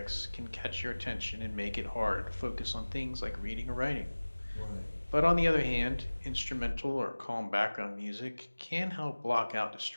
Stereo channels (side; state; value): both; inverted; correlation -1.00